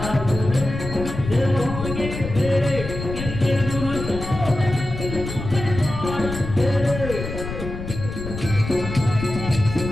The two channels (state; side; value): noise; left; rumble, 7 dB below the sound